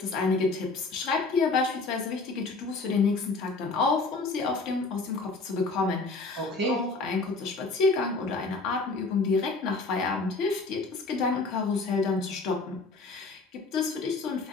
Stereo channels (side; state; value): right; quieter; 3.7 dB